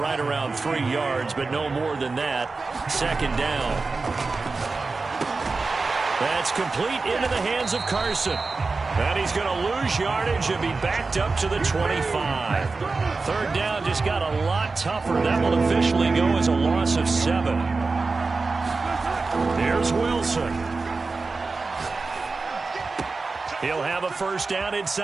around 3 yards, but no more than that. 2nd down. That's complete into the hands of Carson. And he's going to lose yardage and be backed up to the 25. 3rd down just got a lot tougher. That will officially go as a loss of 7. Here's Wilson. He'll have a first down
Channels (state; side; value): quieter; left; 4.0 dB